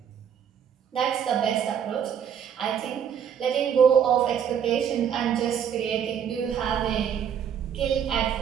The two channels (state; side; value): quieter; left; 8.3 dB